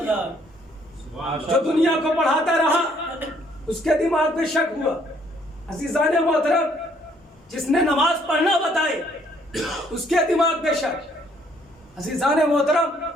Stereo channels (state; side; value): normal; both; correlation 0.65